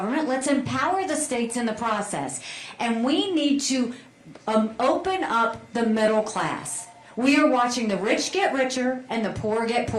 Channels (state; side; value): identical; both; correlation 1.00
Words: Let's empower the states in the process. And we need to open up the middle class. We are watching the rich get richer and the poor get